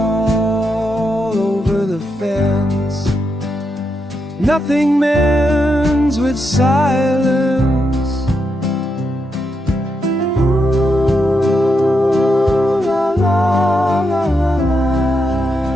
over the fence. Nothing mends with silence. Ooh, la la la la la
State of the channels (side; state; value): both; normal; correlation 0.83